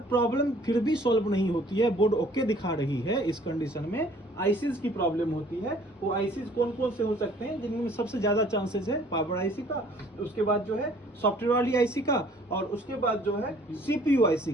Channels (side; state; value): both; normal; correlation 0.56